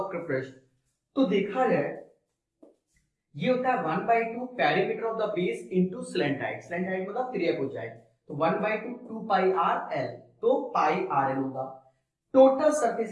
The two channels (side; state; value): both; identical; correlation 1.00